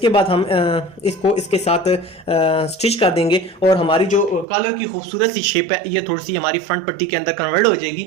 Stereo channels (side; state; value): left; drops out; at 4.5 s